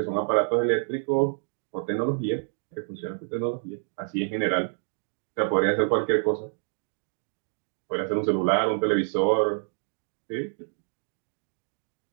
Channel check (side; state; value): left; silent; digital silence